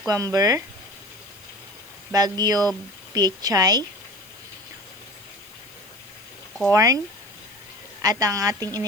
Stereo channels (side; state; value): left; noise; hiss, 24 dB below the sound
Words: bagyo pechay, corn, at ang ating